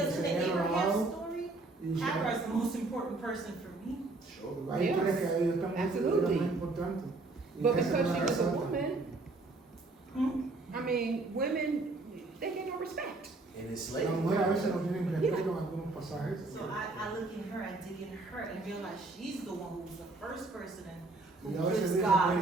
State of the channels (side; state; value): left; quieter; 3.3 dB